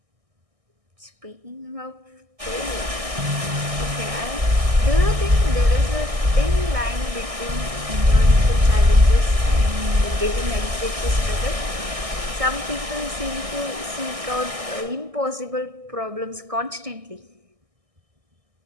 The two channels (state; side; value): late; left; 1.6 ms